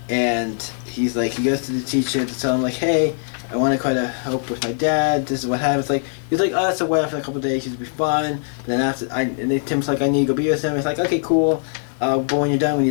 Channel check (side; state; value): right; silent; 64 dB below the other